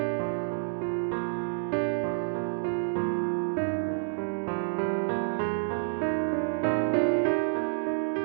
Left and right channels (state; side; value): silent; left; digital silence